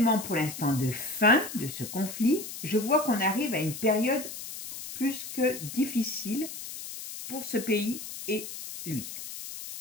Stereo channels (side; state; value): left; noise; hiss, 10 dB below the sound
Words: pour l'instant de fin de ce conflit. Je vois qu'on arrive à une période plus que difficile pour ce pays et lui.